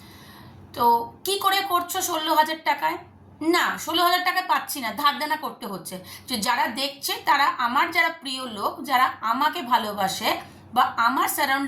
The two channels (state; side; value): identical; both; correlation 1.00